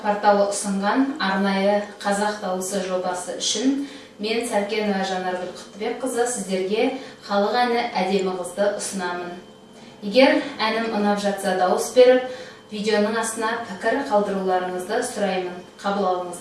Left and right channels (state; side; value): identical; both; correlation 1.00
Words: порталы ұсынған арнайы қазақ дауысы жобасы үшін мен Сәркенова Жанаргүл Құттыбекқызы сіздерге халық әні әдемі қызды ұсынамын. Егер әнім ұнап жатса дауыс беріп, видеоның астына пікір қалдыруларыңызды сұраймын. Қабыл